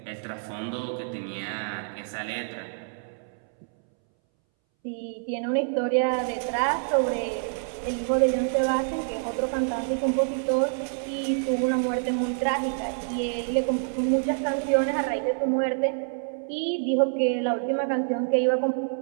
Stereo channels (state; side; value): silent; left; 60 dB below the other